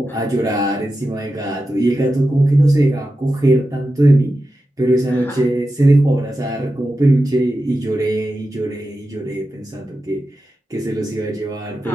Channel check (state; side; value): normal; both; correlation 0.91